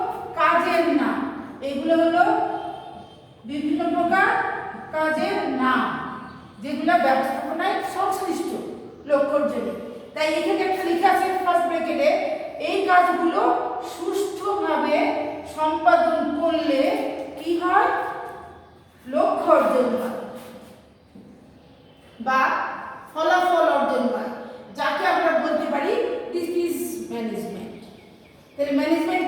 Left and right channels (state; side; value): identical; both; correlation 1.00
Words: কাজের নাম। এগুলো হলো বিভিন্ন প্রকার কাজের নাম, যেগুলো ব্যবস্থাপনায় সংশ্লিষ্ট লক্ষ্য অর্জনে। তাই এখানে একটা লেখা আছে ফার্স্ট ব্র্যাকেটে, এই কাজগুলো সুষ্ঠুভাবে সম্পাদন করলে কি হয়, লক্ষ্য অর্জন হয় বা ফলাফল অর্জন হয়, যাকে আমরা বলতে পারি দিস ইজ ম্যানেজমেন্ট। তাহলে ম্যানেজমেন্ট